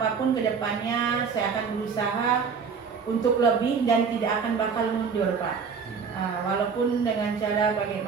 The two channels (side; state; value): left; quieter; 5.8 dB